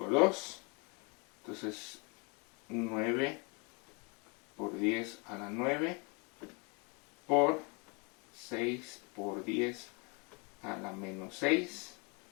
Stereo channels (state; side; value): quieter; right; 32.2 dB